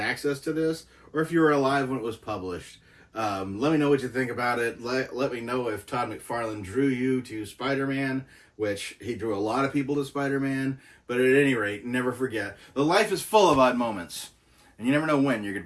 to this, or if you were alive when it was published. Let me know what you think about it. Let me know if Todd McFarlane drew you to Spider-Man, which he drew a lot of people to Spider-Man. But at any rate, never forget, the life is full of odd moments, and you never know when you're going to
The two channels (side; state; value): both; identical; correlation 1.00